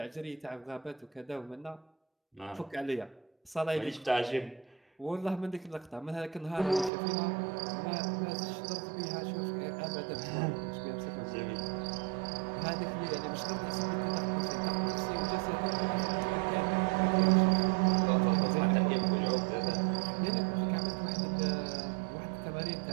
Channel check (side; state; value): left; drops out; at 6.9 s